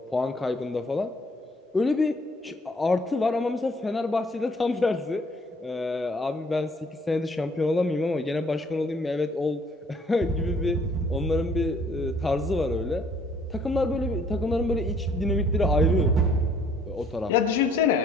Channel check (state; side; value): normal; both; correlation 0.61